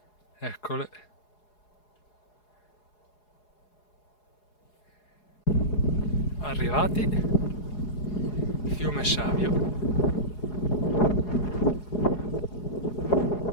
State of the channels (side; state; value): right; late; 4.8 ms